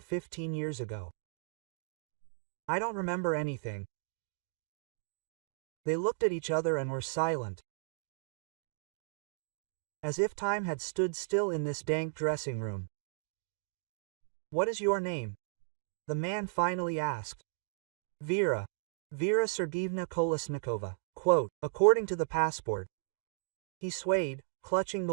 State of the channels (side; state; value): left; silent; digital silence